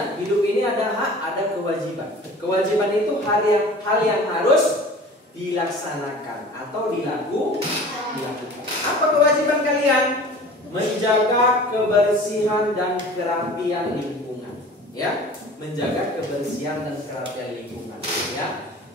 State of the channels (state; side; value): normal; both; correlation 0.42